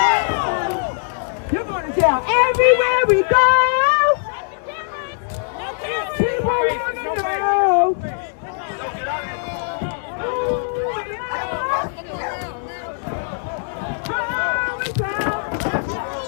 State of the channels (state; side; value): silent; right; digital silence